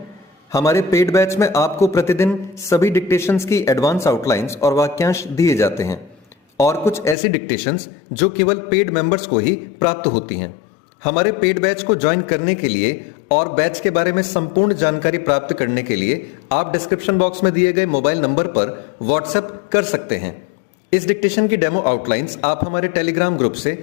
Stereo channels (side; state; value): right; drops out; at 7.2 s